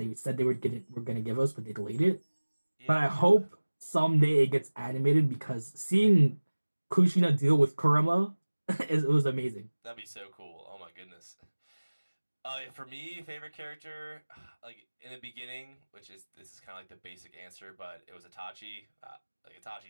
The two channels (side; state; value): both; inverted; correlation -1.00